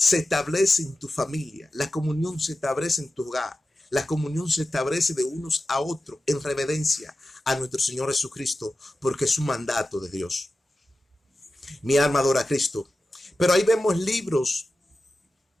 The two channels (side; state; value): both; normal; correlation 0.94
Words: establece en tu familia, la comunión se establece en tu hogar, la comunión se establece de unos a otros en reverencia a nuestro Señor Jesucristo, porque es un mandato de Dios. Mi alma adora a Cristo. Pero ahí vemos libros